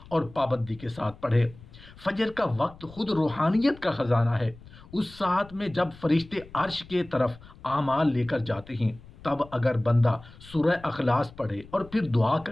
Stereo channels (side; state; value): left; noise; rumble, 21 dB below the sound